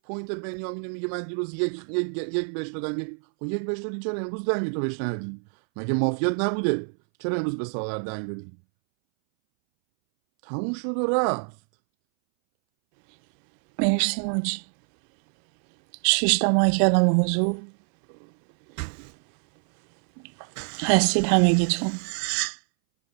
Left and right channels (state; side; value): silent; left; 61 dB below the other